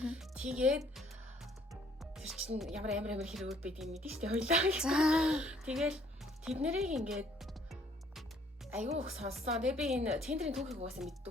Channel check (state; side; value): normal; both; correlation 0.62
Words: Тэгээд тэр чинь ямар хэрэгүүд байдгийг мэдэн штэ хоёлаа. Тэгэл тэднэрийг ингээд аягүй их сонссон. Тэгээ би энэ Tinder-ийн түүхийг угаасаа мэддэг